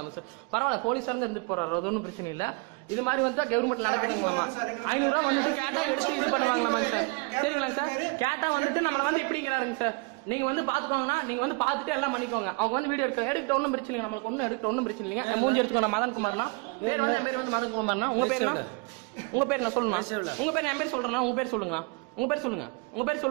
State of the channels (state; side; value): quieter; left; 31.0 dB